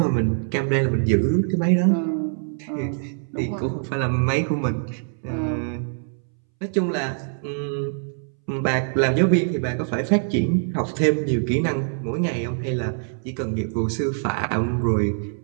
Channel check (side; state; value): left; silent; 63 dB below the other